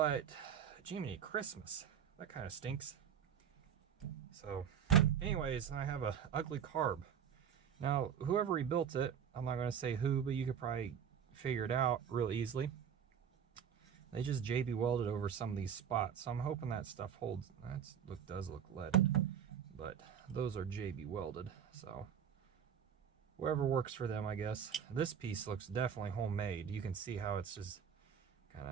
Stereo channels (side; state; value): left; quieter; 8.2 dB